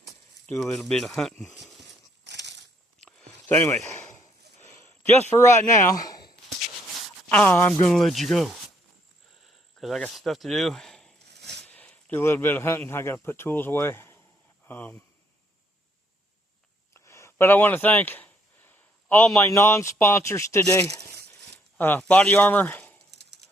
do a little bit of hunting. So anyway, just for right now, I'm going to let you go. Because I got stuff to do. Do a little bit of hunting. I got to put tools away. But I want to thank all my non-sponsors today. Body Armor,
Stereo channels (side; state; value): both; normal; correlation 0.69